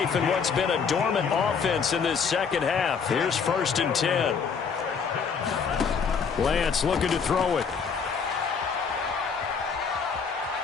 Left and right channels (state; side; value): quieter; right; 6.0 dB